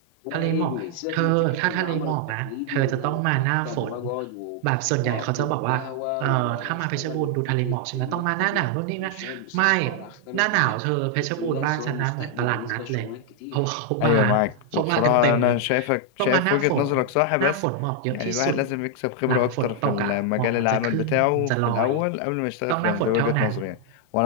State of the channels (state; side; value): different; both; correlation 0.00